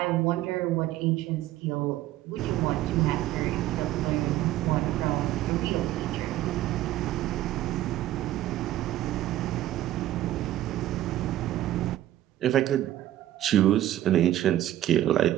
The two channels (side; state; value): left; quieter; 13.8 dB